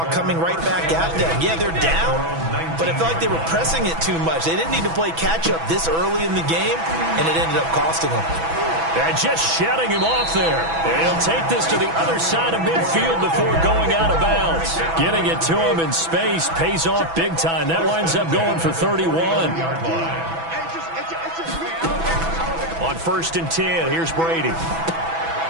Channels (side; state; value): left; late; 6.1 ms